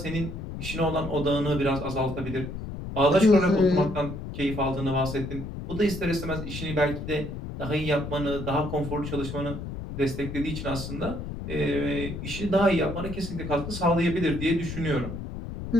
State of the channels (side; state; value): left; noise; rumble, 7 dB below the sound